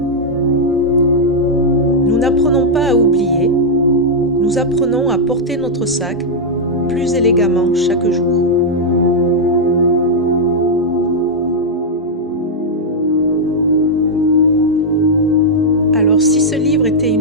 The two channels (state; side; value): normal; both; correlation -0.04